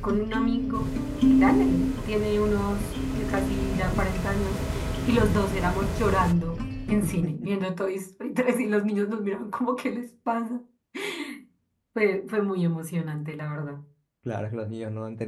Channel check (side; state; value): both; identical; correlation 1.00